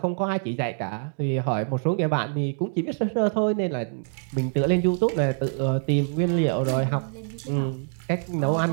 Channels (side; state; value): left; silent; 62 dB below the other